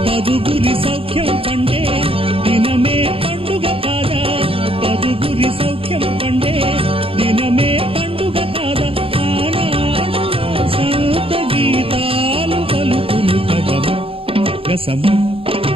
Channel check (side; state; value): left; late; 0.27 ms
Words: పదుగురి సౌఖ్యం పండే దినమే పండుగ కాదా పదుగురి సౌఖ్యం పండే దినమే పండుగ కాదా ఆనాడు సంత గీతాలు పలుకులు కదమ గసమ